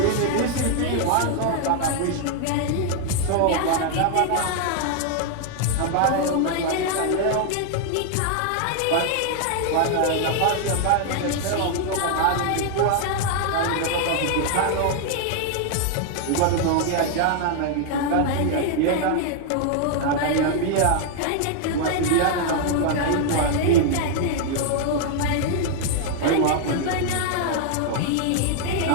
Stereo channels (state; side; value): different; both; correlation 0.00